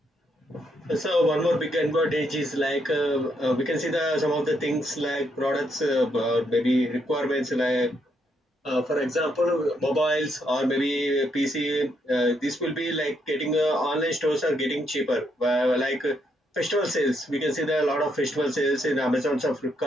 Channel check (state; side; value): normal; both; correlation 0.76